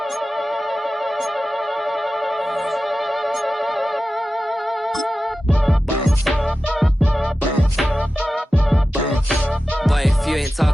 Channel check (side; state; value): both; normal; correlation 0.94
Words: Boy, if you ain't